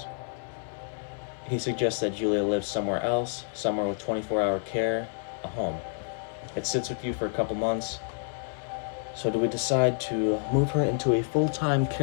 He suggests that Julia lives somewhere else, somewhere with 24-hour care, a home. It sits with you for a couple months. So do we decide to move her into a full-time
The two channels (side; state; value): right; silent; 59 dB below the other